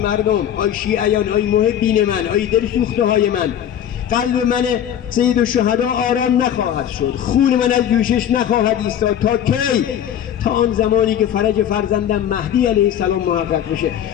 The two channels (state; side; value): quieter; right; 10.0 dB